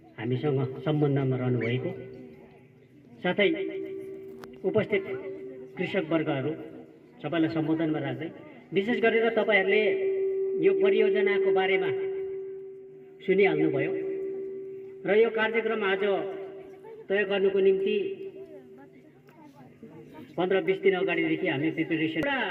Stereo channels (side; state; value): both; identical; correlation 1.00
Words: हामीसँग सम्बन्धमा रहनुभएको, साथै उपस्थित कृषक वर्गहरू सबैलाई सम्बोधनमा राख्दै विशेष गरेर तपाईहरूले यो परियोजनाको बारेमा सुनिहाल्नुभयो र यो कार्यक्रम आज तय गर्नुको निम्ति 15-20 दिन अगाडिदेखि हामी प्रिपेरेसन।